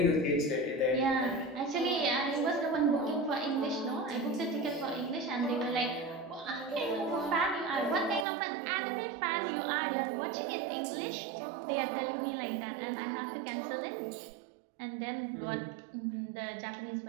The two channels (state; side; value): drops out; left; at 8.2 s